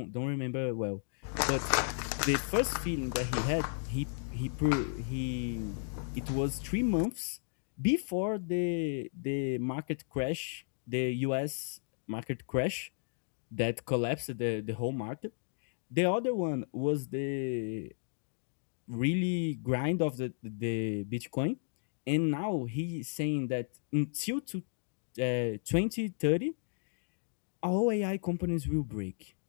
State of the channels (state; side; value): silent; right; digital silence